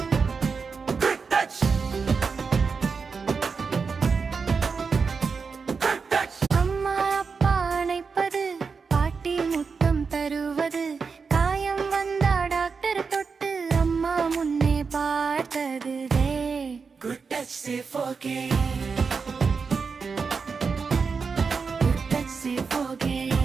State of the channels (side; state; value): left; quieter; 5.2 dB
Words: Good touch, say forget. Good touch, say forget.